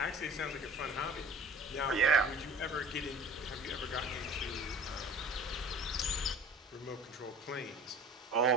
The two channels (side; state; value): both; normal; correlation 0.44